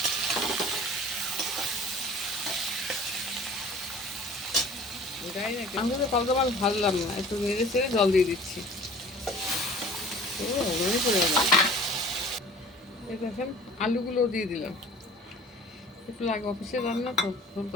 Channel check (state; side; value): normal; both; correlation 0.46